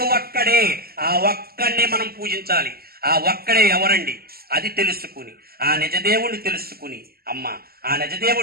ఒక్కడే. ఆ ఒక్కడిని మనం పూజించాలి. ఆ ఒక్కడే ఎవరండి? అది తెలుసుకుని, ఆ నిజదేవుణ్ణి తెలుసుకుని, అమ్మ, ఆ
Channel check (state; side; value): late; left; 0.45 ms